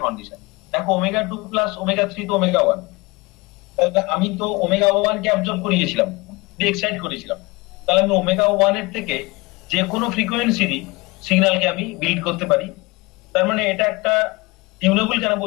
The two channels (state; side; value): quieter; right; 24.3 dB